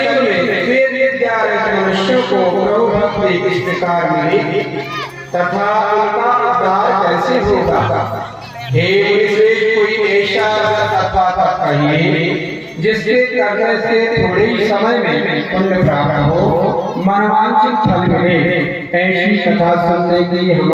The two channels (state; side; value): identical; both; correlation 1.00